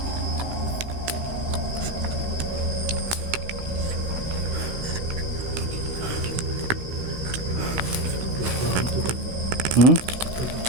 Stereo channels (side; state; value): left; late; 16 ms